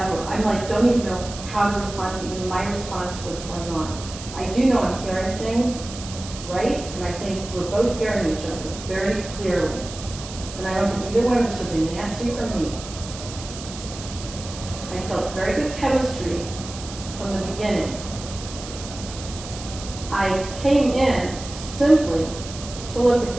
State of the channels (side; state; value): right; noise; hiss, 12 dB below the sound